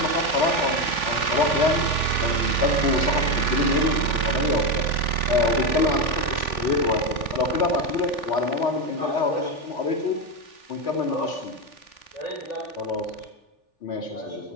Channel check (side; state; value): right; late; 3.4 ms